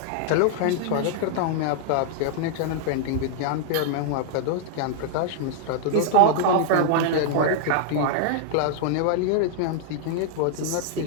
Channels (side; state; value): both; different; correlation -0.01